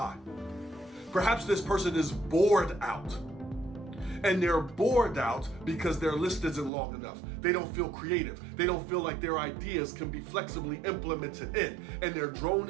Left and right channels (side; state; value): left; drops out; at 6.7 s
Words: Perhaps this person is bored out. And they're bored out because their list isn't long enough. They don't feel creative. They don't feel like their ideas can be flexibly implemented in. And they're